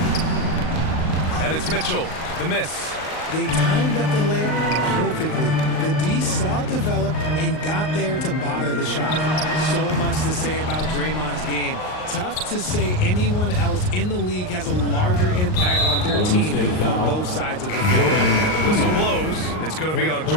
And it's Mitchell, the miss. They timed up the layup perfectly. The D saw it develop and got there to bother the shot. So much to say about Draymond's game. Tough to say anyone else in the league has a larger impact on their team on both sides of the floor. And the whistle blows. It's going to be on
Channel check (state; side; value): late; right; 38 ms